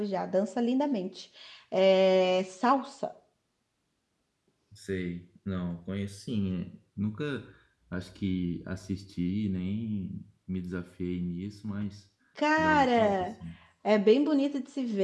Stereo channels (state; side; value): identical; both; correlation 1.00